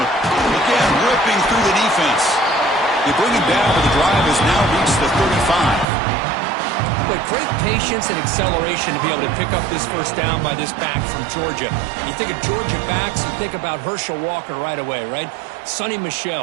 again, ripping through the defense. They bring him down, but the drive has now reached the 35. But great patience and acceleration to be able to pick up this first down by this back from Georgia. You think of Georgia backs, you think about Herschel Walker right away, right? Sonny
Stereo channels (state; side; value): drops out; left; at 5.9 s